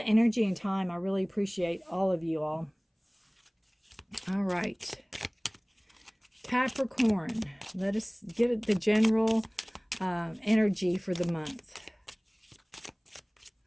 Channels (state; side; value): identical; both; correlation 1.00